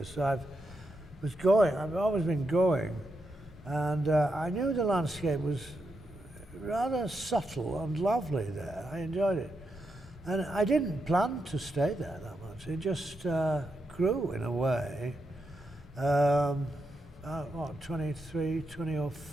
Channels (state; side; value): normal; both; correlation 0.84